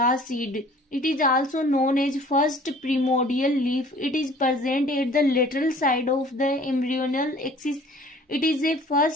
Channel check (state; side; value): normal; both; correlation 0.51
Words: seed. It is also known as first primordial leaf. It is present at the lateral side of the embryonal axis. It is a